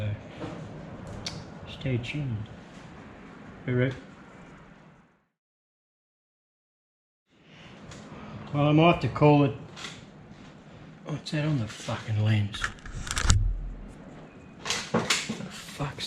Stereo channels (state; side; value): identical; both; correlation 1.00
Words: stay tuned. Alright. Well, I might have to call it. What's that on the fucking lens? What the